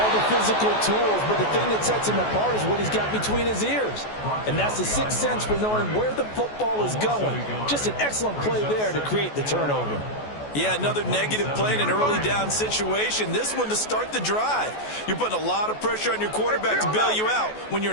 the physical tools, but the thing that sets him apart is what he's got between his ears. And that's the sixth sense for knowing where the football is going. Just an excellent play there to create the turnover. Yeah, another negative play in an early down situation. This one to start the drive. You're putting a lot of pressure on your quarterback to bail you out when you're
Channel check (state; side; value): late; right; 14 ms